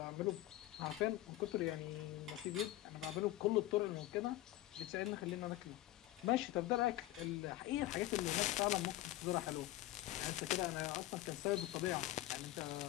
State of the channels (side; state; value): right; quieter; 15.8 dB